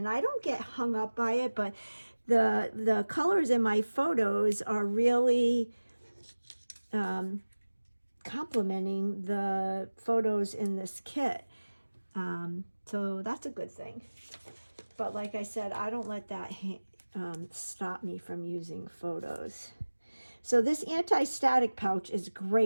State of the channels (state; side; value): inverted; both; correlation -1.00